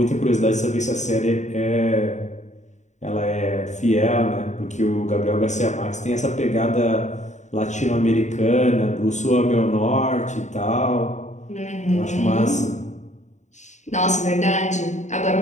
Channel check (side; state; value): right; late; 0.34 ms